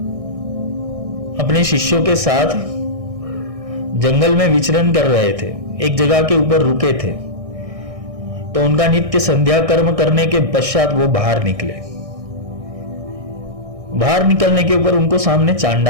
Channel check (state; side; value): late; left; 1.6 ms